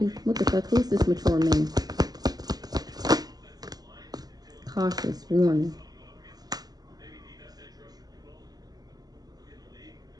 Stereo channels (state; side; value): late; left; 0.19 ms